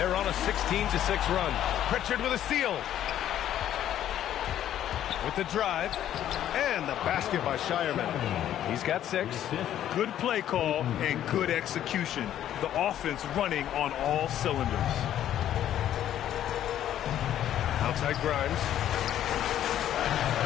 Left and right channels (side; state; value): right; quieter; 11.4 dB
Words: on a 16-6 run. Pritchard with a steal. With the drive. And the basket by Shireman. He's got 6. Good play call and good execution. The offense running on all cylinders. Outside Grimes.